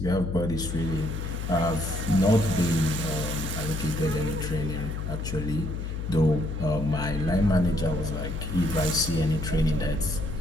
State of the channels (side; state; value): left; noise; hum, 5 dB below the sound